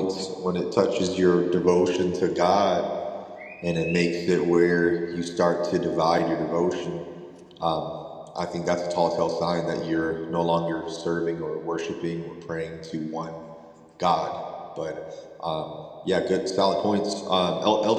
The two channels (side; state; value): both; identical; correlation 1.00